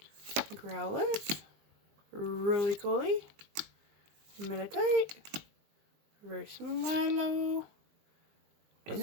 Growlithe. Roly-Poly. Meditite. Reverse Milo.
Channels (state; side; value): late; left; 20 ms